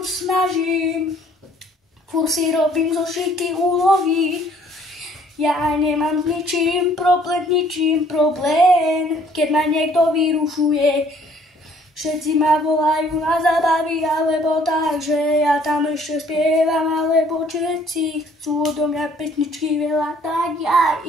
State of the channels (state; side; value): normal; both; correlation 0.59